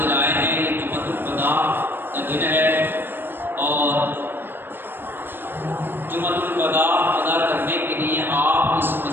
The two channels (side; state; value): left; late; 0.098 ms